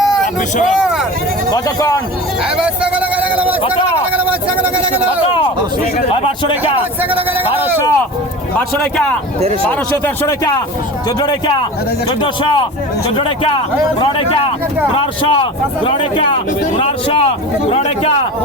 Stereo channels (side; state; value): both; normal; correlation 0.33